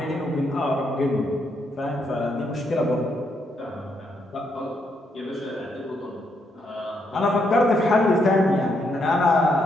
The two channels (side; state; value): both; normal; correlation 0.77